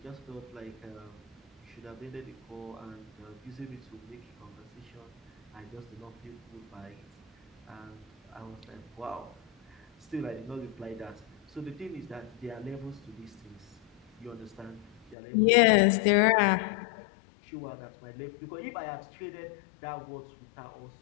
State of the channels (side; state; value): right; drops out; at 15.2 s